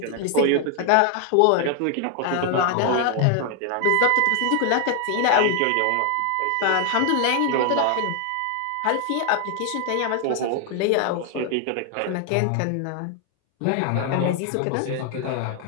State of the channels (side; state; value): both; different; correlation 0.00